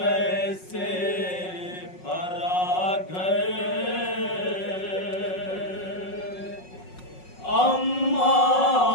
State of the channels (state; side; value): late; right; 5.5 ms